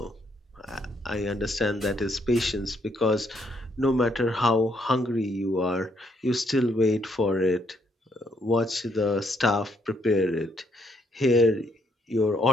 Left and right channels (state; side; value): normal; both; correlation 0.72